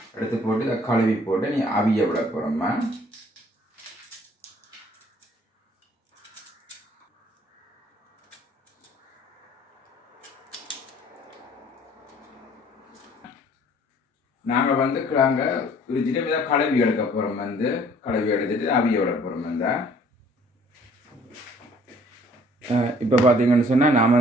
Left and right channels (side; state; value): both; normal; correlation 0.57